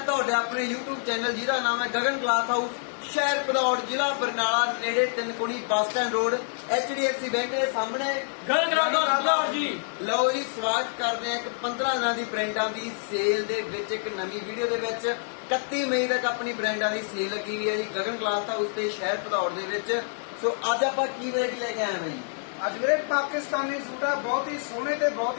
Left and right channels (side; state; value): right; silent; digital silence